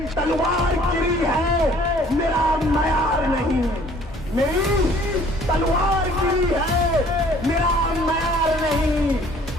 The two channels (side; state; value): both; normal; correlation 0.55